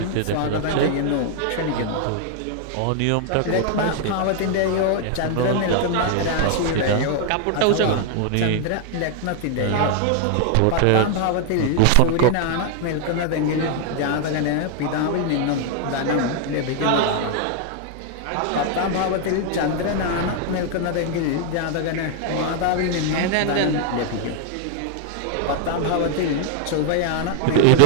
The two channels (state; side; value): different; both; correlation 0.00